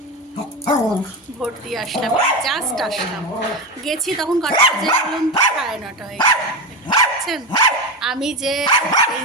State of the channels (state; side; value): normal; both; correlation 0.17